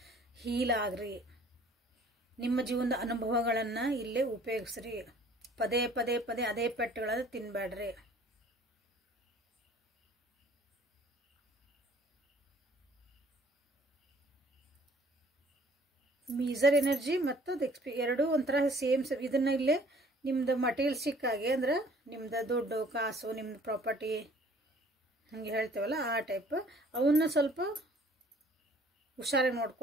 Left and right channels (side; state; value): both; normal; correlation 0.55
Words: ಹೀಲ್ ಆಗ್ರಿ. ನಿಮ್ಮ ಜೀವನದ ಅನುಭವಗಳನ್ನು ಇಲ್ಲೇ ಉಪಯೋಗಿಸ್ರಿ. ಪದೇ ಪದೇ ಪದೇ ಅದೇ ಪೆಟ್ಟುಗಳನ್ನು ತಿನ್ಬೇಡ್ರಿ. ಮೀಸರ್ ಎನರ್ಜಿ ಮತ್ತು ಎರಡೂ ಒಂಥರ ಸೇಮ್. ಇದನ್ನ ಇಲ್ಲೇ ನಿಮ್ದು ಮಟೀರಿಯಲ್ಸಿಕ್ಕಾಗಿ ಅಂದ್ರೆ ನಿಮ್ದು ದುಡ್ಡು ಕಾಸು, ನಿಮ್ದು ಪ್ರಾಪರ್ಟಿ ಹಂಗೆ ಹೇಳ್ತೇವಲ್ಲ ಆ ಟೈಪ್, ಅವನ್ನ ಸ್ವಲ್ಪ ಹುಷಾರಾಗಿ